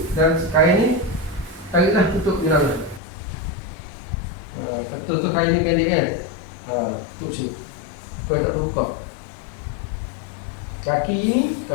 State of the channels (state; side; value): drops out; right; at 3.0 s